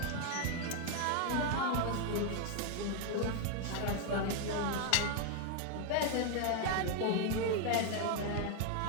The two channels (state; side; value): different; both; correlation 0.01